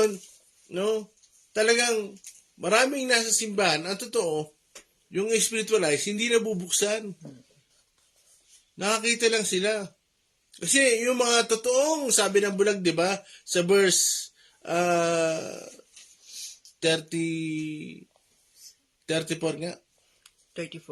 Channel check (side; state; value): both; identical; correlation 1.00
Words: no, talagang maraming nasa simbahan, ang totoo, yung spiritual eyes, hindi nabubuksan. Nakakita lang sila. Kasi yung mga totoong, sabi ng bulag, di ba, sa verse 34 nga.